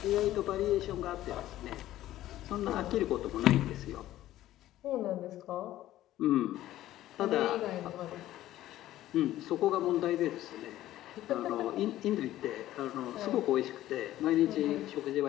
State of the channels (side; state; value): right; quieter; 14.1 dB